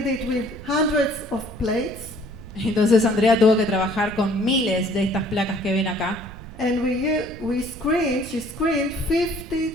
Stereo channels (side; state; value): right; noise; rumble, 15 dB below the sound